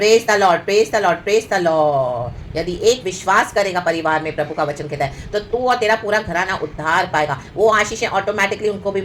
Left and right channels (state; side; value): identical; both; correlation 1.00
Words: the lord, praise the lord, praise the lord. यदि एक विश्वास करेगा परिवार में, प्रभु का वचन कहता है, तो तू और तेरा पूरा घराना उद्धार पाएगा। वो आशीषें ऑटोमेटिकली उनको भी